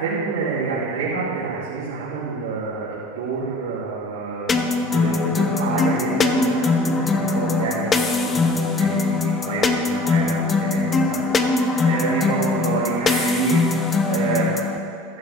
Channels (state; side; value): normal; both; correlation 0.48